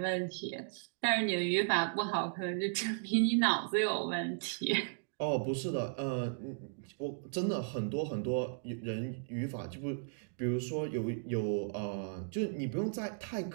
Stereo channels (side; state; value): left; silent; digital silence